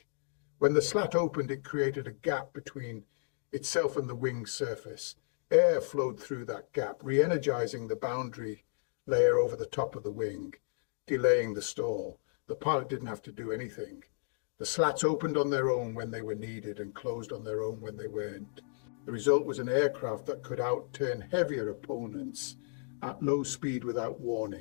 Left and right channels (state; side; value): silent; right; digital silence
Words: When the slat opened, it created a gap between itself and the wing surface. Air flowed through that gap, re-energizing the boundary layer over the top of the wing, delaying the stall. The pilot didn't have to do anything. The slats opened on their own when they were needed and closed on their own when they weren't. The result was an aircraft that could outturn heavier opponents at low speed without